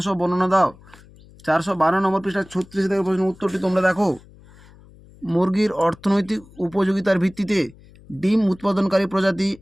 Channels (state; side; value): noise; left; hum, 24 dB below the sound